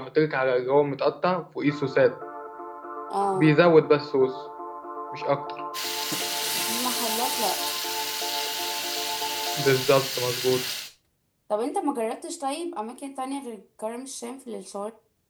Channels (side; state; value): both; identical; correlation 1.00